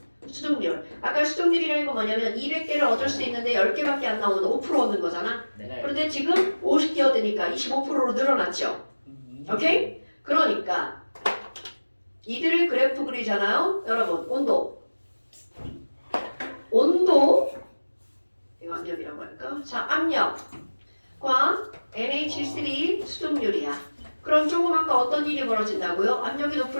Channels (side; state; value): both; inverted; correlation -1.00